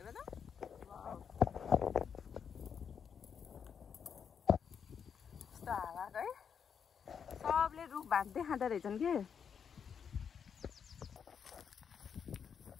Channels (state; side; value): quieter; right; 7.2 dB